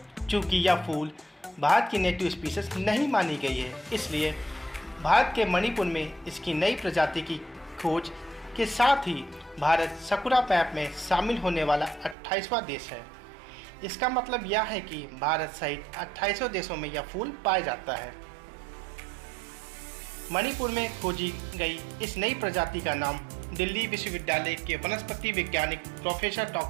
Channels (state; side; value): drops out; left; at 12.2 s